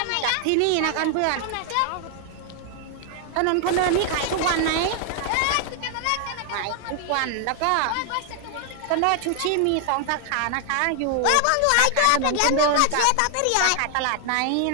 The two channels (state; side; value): different; both; correlation 0.00